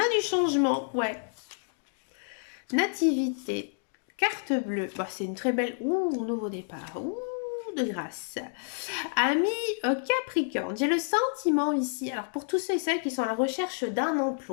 du changement, ouais. Nativité, carte bleue. Bah, c'est une très belle... Ouh, nouveau départ. Ouh, de grâce. Ami Capricorne, j'ai le sentiment ici, alors pour tous ceux et celles qui sont à la recherche d'un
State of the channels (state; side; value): silent; right; digital silence